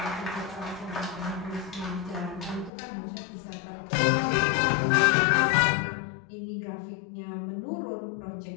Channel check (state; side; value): drops out; right; at 2.7 s